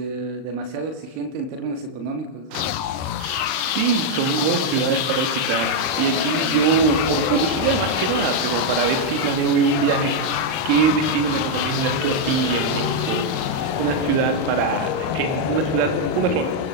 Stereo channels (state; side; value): late; left; 39 ms